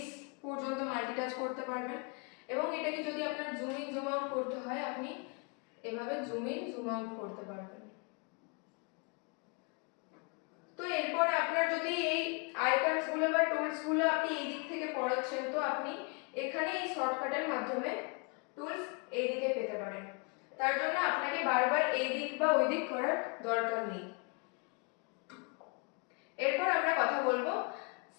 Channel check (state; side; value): quieter; right; 33.6 dB